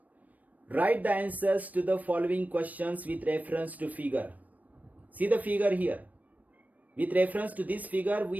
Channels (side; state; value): left; late; 0.075 ms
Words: Write the answers to the following questions with reference to figure. See the figure here. With reference to this figure,